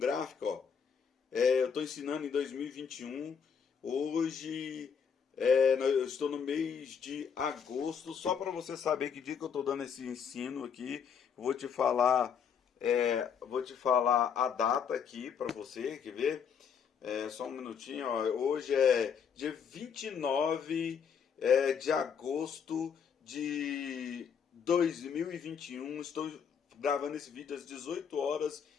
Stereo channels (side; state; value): right; quieter; 7.0 dB